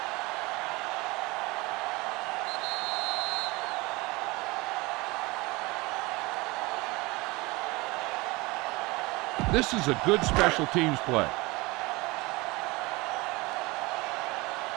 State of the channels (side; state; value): left; quieter; 23.4 dB